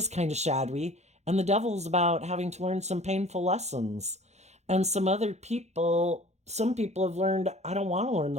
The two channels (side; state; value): left; late; 0.32 ms